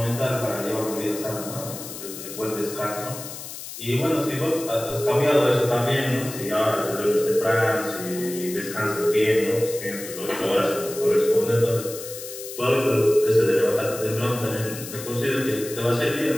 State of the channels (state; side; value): noise; left; hiss, 11 dB below the sound